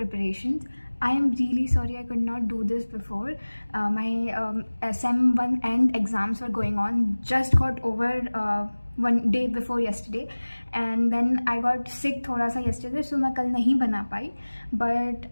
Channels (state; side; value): inverted; both; correlation -1.00